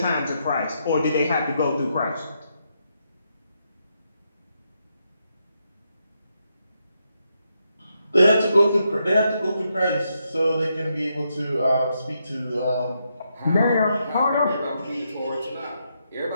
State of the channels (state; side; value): inverted; both; correlation -0.81